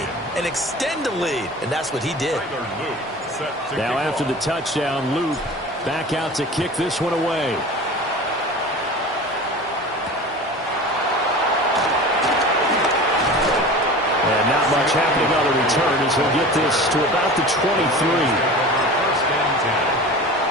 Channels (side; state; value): both; normal; correlation 0.36